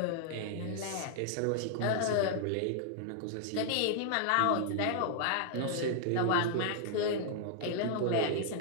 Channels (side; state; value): both; different; correlation -0.01